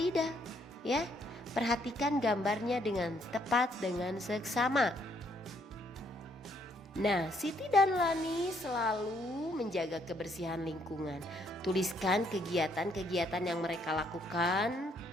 Ya, perhatikan gambarnya dengan tepat dengan seksama. Nah, Siti dan Lani selalu menjaga kebersihan lingkungan. Tuliskan kegiatan-kegiatan yang mereka lakukan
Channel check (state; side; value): normal; both; correlation 0.69